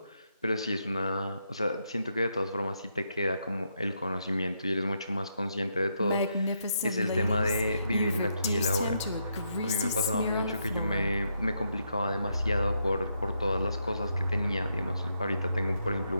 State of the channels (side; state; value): both; inverted; correlation -0.79